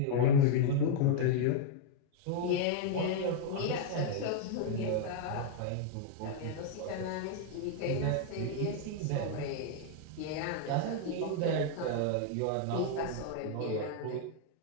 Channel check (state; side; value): different; both; correlation 0.00